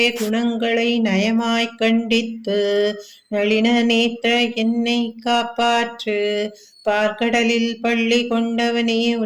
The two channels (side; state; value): both; identical; correlation 1.00